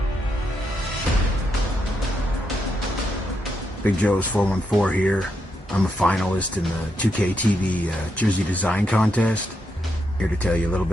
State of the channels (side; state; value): both; normal; correlation 0.81